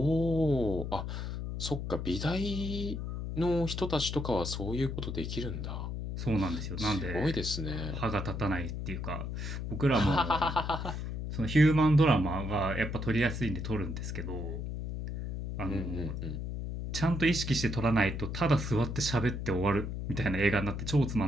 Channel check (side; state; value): left; noise; hum, 4 dB below the sound